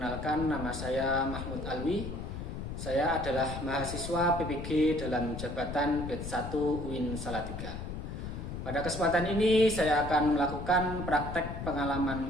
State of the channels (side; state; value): left; noise; rumble, 7 dB below the sound